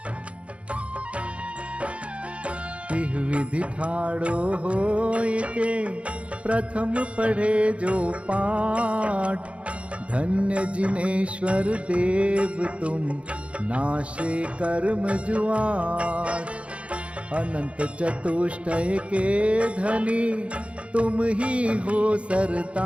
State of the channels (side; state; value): left; late; 0.062 ms